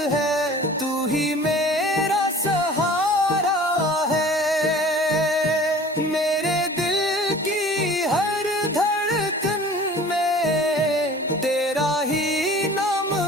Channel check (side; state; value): both; normal; correlation 0.45